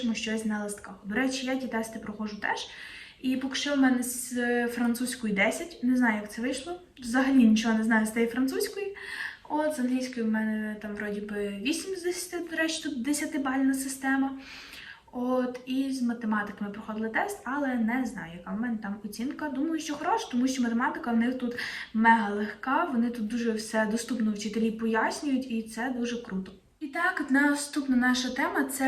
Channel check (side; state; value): both; identical; correlation 1.00